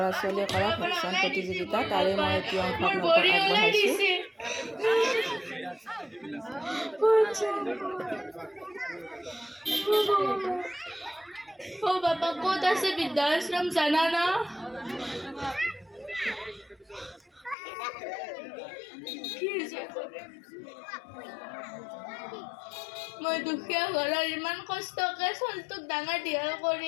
ছোৱালীয়ে কৰা ভেকচন প্ৰতিযোগিতা, তাৰে মই এটি অংশ আপোনালোকক আগবঢ়াইছোঁ। ও বাবা ক'ত আছে বৃদ্ধাশ্রম জানা না? মই দুখীয়া ঘৰৰ ইমান কষ্টকে চলটোক ডাঙৰ দীঘল কৰি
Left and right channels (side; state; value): right; drops out; at 17.6 s